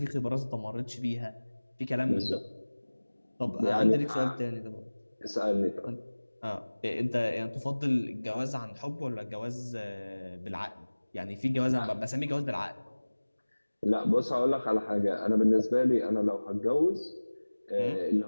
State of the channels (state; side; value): inverted; both; correlation -1.00